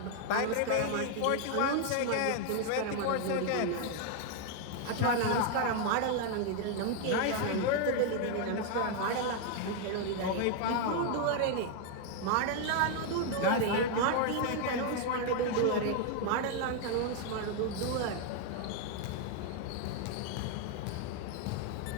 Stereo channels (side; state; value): both; different; correlation 0.00